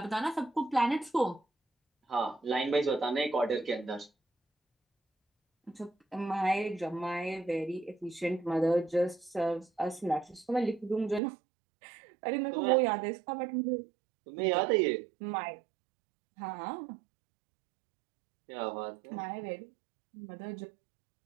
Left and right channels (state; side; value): drops out; left; at 11.2 s